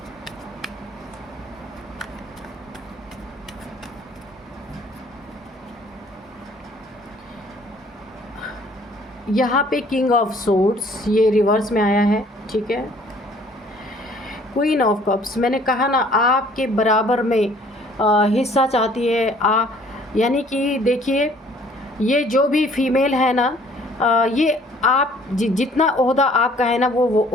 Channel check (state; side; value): normal; both; correlation 0.57